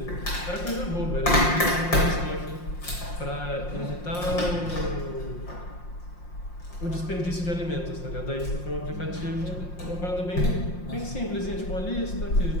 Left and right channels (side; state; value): right; late; 5.6 ms